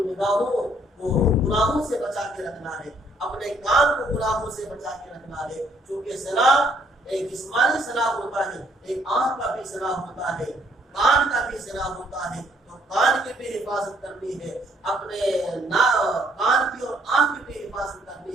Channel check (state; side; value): normal; both; correlation 0.66